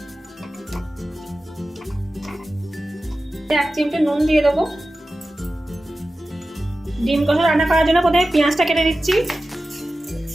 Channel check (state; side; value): normal; both; correlation 0.94